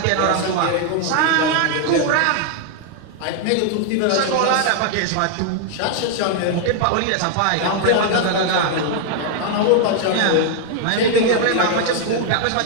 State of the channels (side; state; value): both; different; correlation 0.00